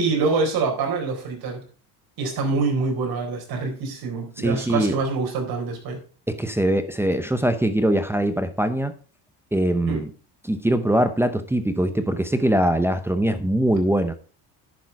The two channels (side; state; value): both; normal; correlation 0.67